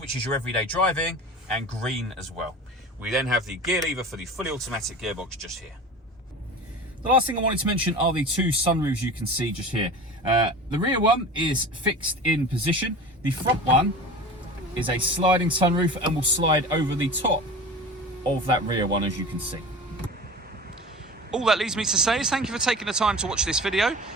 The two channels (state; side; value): normal; both; correlation 0.35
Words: is your everyday driving, and green as well. We then have the gear lever for the fully automatic gearbox just here. The last thing I wanted to mention are the 2 sunroofs you can see just here. The rear one is fixed in position. The front one is a sliding sunroof and will slide over the top of that rear one, as you can see. All that leaves me to say is thank you for taking the time to watch this video.